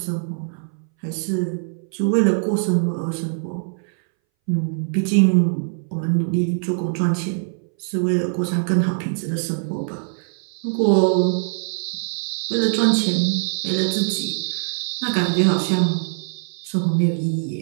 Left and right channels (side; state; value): left; silent; 62 dB below the other